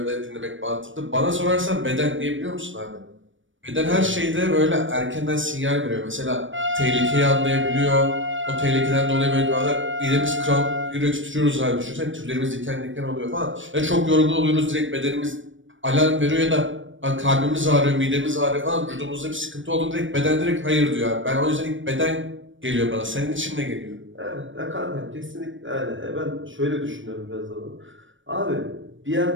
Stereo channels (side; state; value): left; late; 0.56 ms